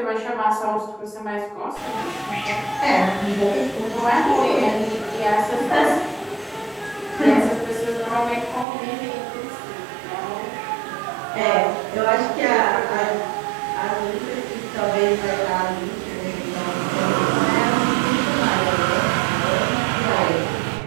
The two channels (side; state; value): left; drops out; at 8.7 s